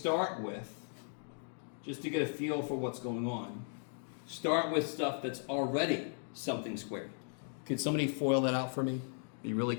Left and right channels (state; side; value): silent; right; 53 dB below the other